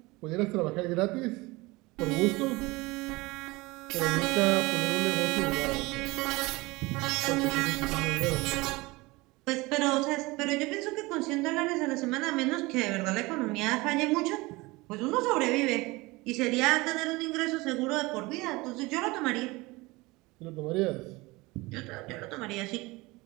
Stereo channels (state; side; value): quieter; left; 22.6 dB